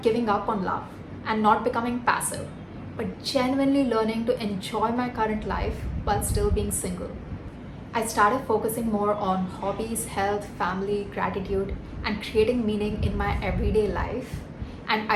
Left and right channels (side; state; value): both; identical; correlation 1.00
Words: giving up on love and not becoming passive, but genuinely learning to enjoy my current life while still being single. I started focusing more on hobbies, health, family, gratitude, and creating meaning in my everyday life. And